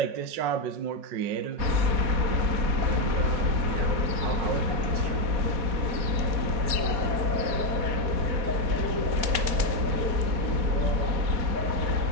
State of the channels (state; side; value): late; left; 4.2 ms